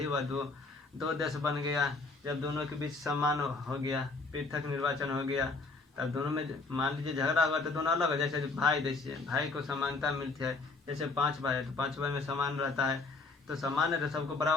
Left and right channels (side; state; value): right; quieter; 3.9 dB